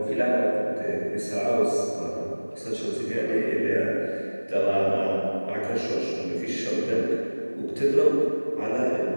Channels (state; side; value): inverted; both; correlation -1.00